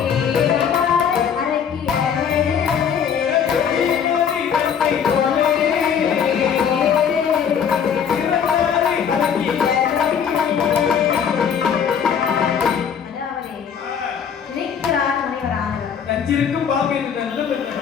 நஞ்சிருக்கும் பாம்பு என்று நல்ல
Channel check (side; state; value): right; quieter; 7.6 dB